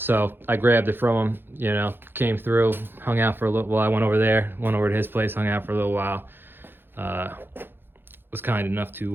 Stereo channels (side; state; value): left; late; 0.10 ms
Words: I grabbed it from him, you know, came through, hung out for a little while. I went over to his place, hung out for a little while. Was kind enough